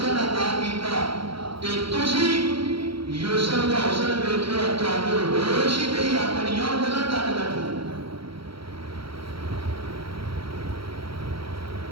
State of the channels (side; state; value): left; late; 0.75 ms